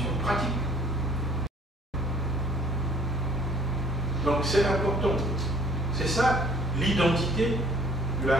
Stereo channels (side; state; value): both; normal; correlation 0.55